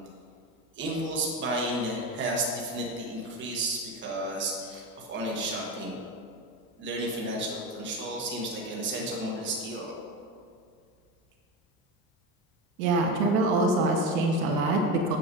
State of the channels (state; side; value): normal; both; correlation 0.21